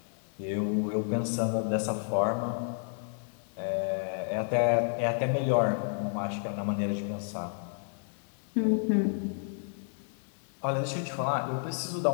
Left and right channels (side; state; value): right; silent; 55 dB below the other